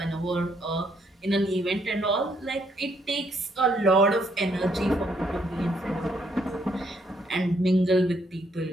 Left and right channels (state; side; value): normal; both; correlation 0.72